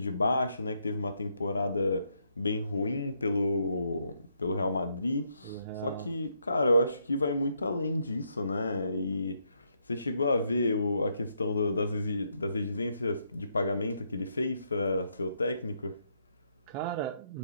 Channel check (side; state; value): both; inverted; correlation -0.76